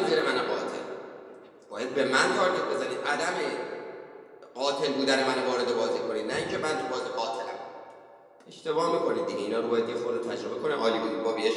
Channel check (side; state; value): both; identical; correlation 1.00